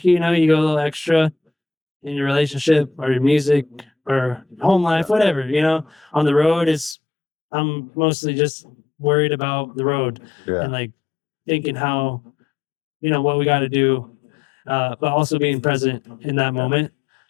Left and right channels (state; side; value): drops out; right; at 7.0 s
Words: you go a little extra in your relationship or your music or home life, whatever, on the road I'm mostly just worried about the road Yeah. and like thinking how, what we got to do, but also being present in that moment,